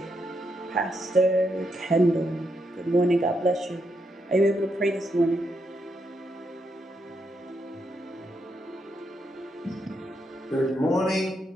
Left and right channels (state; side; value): normal; both; correlation 0.80